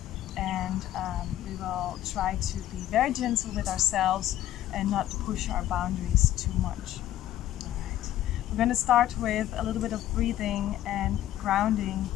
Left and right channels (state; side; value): quieter; right; 13.0 dB